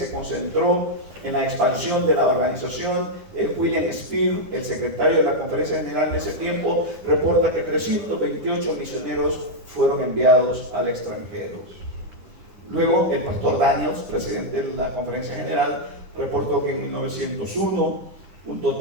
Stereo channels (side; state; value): left; late; 10 ms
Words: concentró en la expansión de la organización. William Spear, el secretario de la Conferencia General en ese tiempo, reporta que 328 misioneros fueron enviados al extranjero. Luego, el pastor Daniels, presidente de la Conferencia General, reportó que en 1901 un